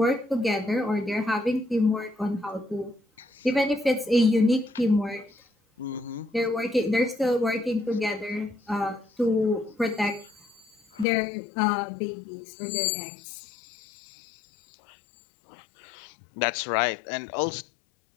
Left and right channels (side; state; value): right; drops out; at 11.1 s